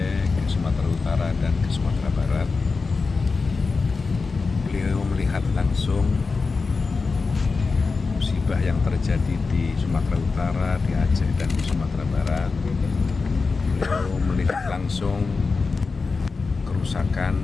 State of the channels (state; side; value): quieter; right; 4.4 dB